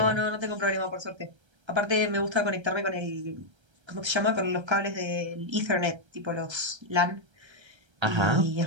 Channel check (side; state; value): left; late; 1.3 ms